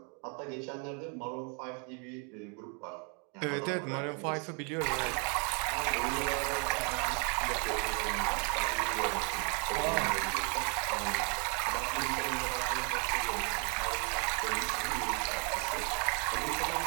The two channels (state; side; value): quieter; left; 36.8 dB